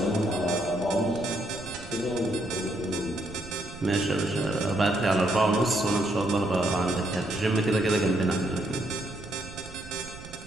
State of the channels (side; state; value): right; noise; rumble, 16 dB below the sound